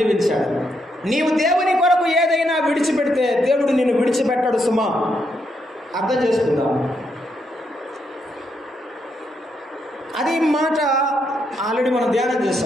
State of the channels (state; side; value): normal; both; correlation 0.78